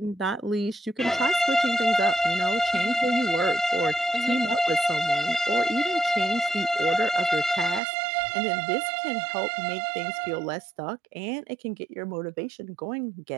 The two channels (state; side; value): drops out; left; at 7.8 s